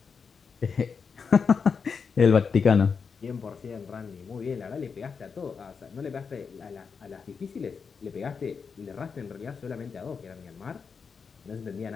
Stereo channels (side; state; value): right; quieter; 5.7 dB